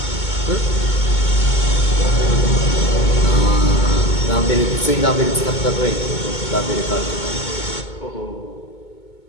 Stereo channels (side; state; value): right; late; 2.2 ms